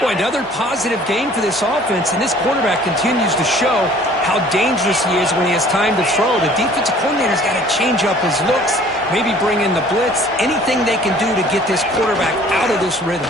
Boy, another positive game for this offense, and this quarterback continues to show how dangerous he is when he has time to throw. The defensive coordinator's got to change up his looks, maybe bring in the blitz, anything they can do to get this quarterback out of this rhythm.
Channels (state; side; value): normal; both; correlation 0.52